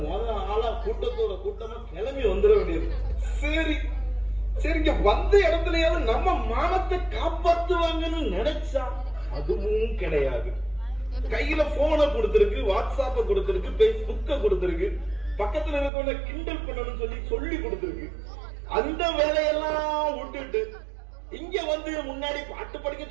ஆளா கூட்டத்தோட கூட்டமா கிளம்பி வந்துட வேண்டியது. சரி சரிங்க, வந்த இடத்துலயாவது நம்ம மானத்தை காப்பாத்துவாங்கன்னு நினைச்சா அதுவும் கிடையாது. கையில போனை கொடுத்திருக்கு, வாட்ஸ்அப்ப கொடுத்திருக்கு, பேஸ்புக்க கொடுத்திருக்கு, பக்கத்துல இருக்கவங்க கிண்டல் பண்ணணும்னு சொல்லி கொடுத்திருக்கு. அந்த வேலையெல்லாம் விட்டுட்டு இங்க வந்து முன்னாடி பாட்டு படிக்க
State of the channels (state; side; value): drops out; left; at 15.9 s